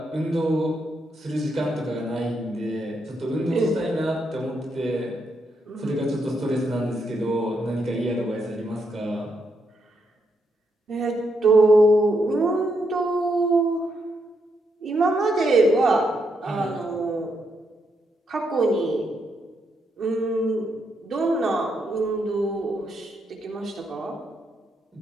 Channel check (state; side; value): normal; both; correlation 0.79